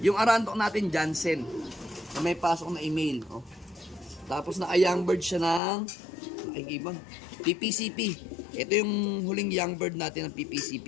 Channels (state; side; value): drops out; right; at 5.6 s